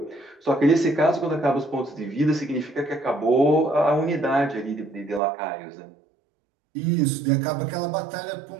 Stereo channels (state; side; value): drops out; left; at 5.2 s